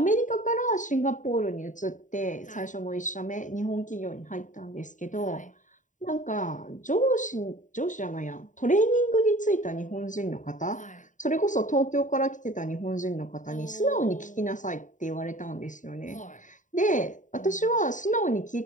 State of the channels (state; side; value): late; right; 0.37 ms